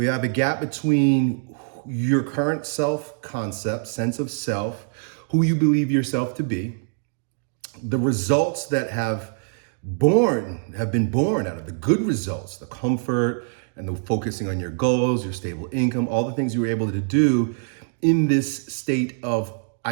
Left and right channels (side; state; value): left; silent; digital silence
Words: have a gap between your current self-concept, sense of self, who you believe yourself to be, the results that have been born out of the good results, the comfort and the focusing on your goals, your stable income, all the things you were able to do in this state of